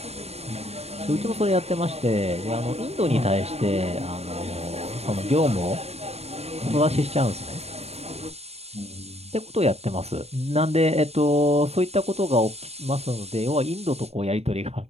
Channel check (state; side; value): late; left; 0.30 ms